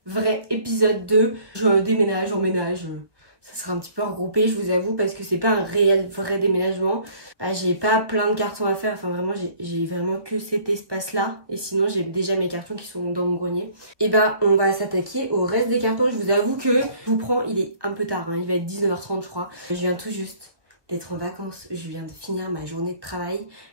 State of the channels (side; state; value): left; late; 1.2 ms